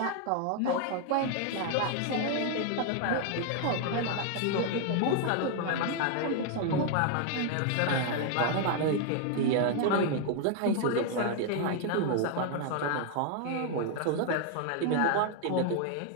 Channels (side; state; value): both; different; correlation 0.00